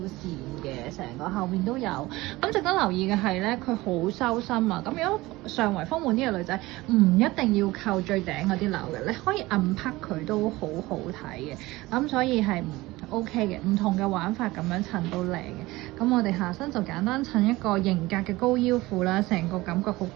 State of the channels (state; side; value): quieter; left; 19.7 dB